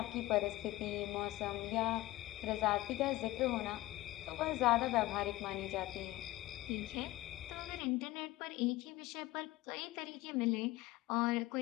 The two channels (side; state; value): right; quieter; 17.7 dB